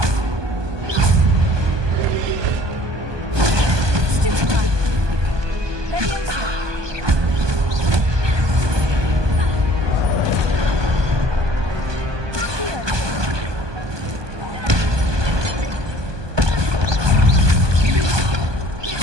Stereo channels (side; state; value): left; late; 1.2 ms